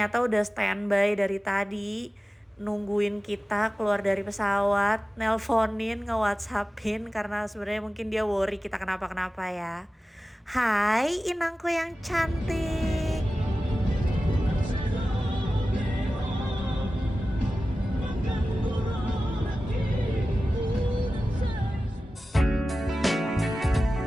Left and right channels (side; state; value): both; normal; correlation 0.95